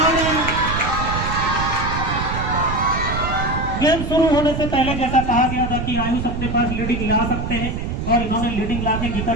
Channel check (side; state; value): right; noise; rumble, 4 dB below the sound